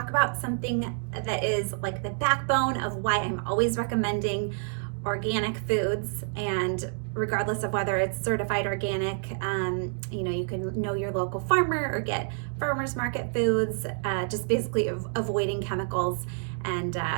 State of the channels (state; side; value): silent; left; 58 dB below the other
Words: about something that is like the backbone of why I'm always recommending organic foods, and regardless of whether it's certified organic, you can know your local farmer or get farmers market foods, just basically avoiding chemicals and